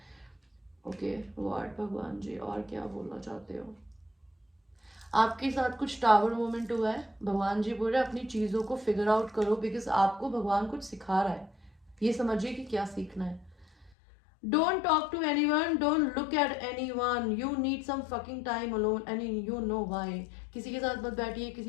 Okay what भगवान जी और क्या बोलना चाहते हो? आपके साथ कुछ टावर मोमेंट हुआ है, भगवान जी बोल रहे हैं अपनी चीजों को फिगर आउट करो, बिकॉज आपको भगवान कुछ सिखा रहा है, ये समझिए कि क्या सीखना है। Don't talk to anyone, don't look at anyone, you need some fucking time alone and you know why। किसी के साथ मत बैठिए,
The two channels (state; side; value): drops out; right; at 13.9 s